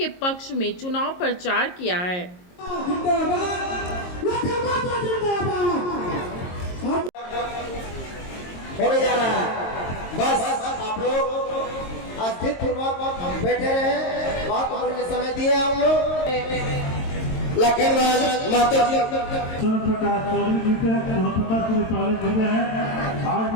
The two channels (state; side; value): late; right; 22 ms